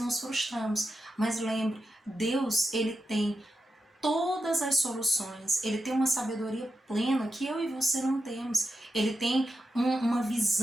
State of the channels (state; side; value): normal; both; correlation 0.88